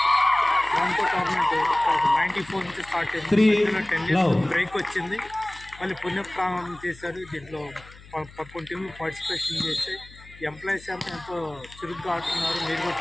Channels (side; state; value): left; noise; hum, 21 dB below the sound